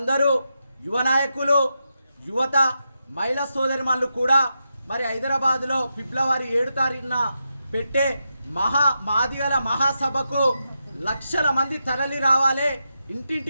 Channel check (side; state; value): both; inverted; correlation -0.86